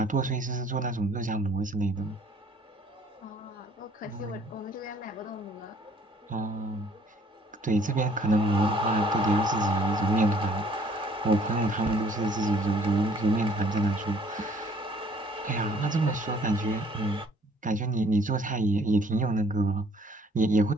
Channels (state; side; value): normal; both; correlation 0.59